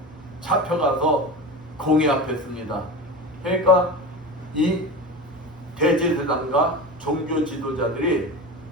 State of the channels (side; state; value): both; normal; correlation 0.28